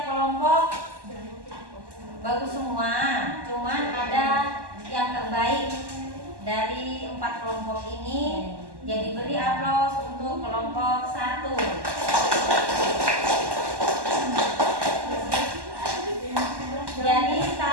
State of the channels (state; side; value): late; left; 1.1 ms